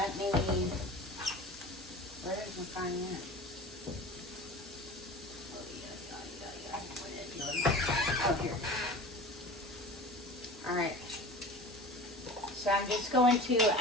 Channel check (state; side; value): normal; both; correlation 0.37